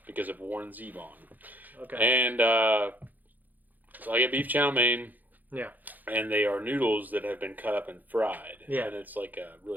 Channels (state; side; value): late; left; 0.084 ms